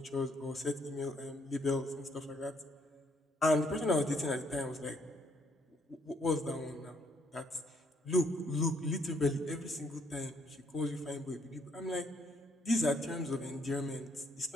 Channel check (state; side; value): normal; both; correlation 0.68